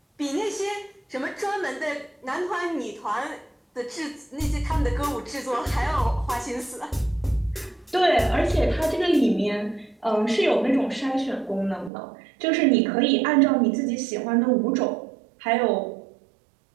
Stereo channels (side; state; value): left; drops out; at 11.9 s